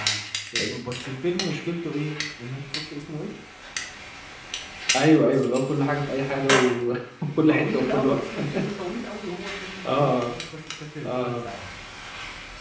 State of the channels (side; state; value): both; identical; correlation 1.00